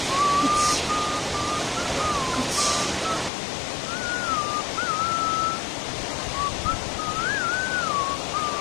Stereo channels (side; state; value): right; drops out; at 3.3 s